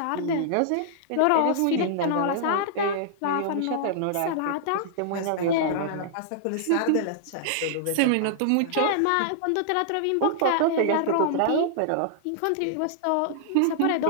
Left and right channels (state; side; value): different; both; correlation -0.01